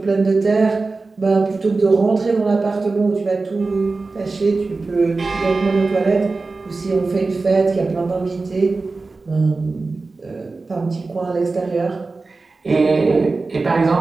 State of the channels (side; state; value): left; quieter; 3.7 dB